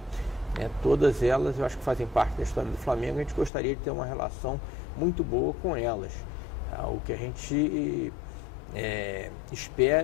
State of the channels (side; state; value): right; drops out; at 3.5 s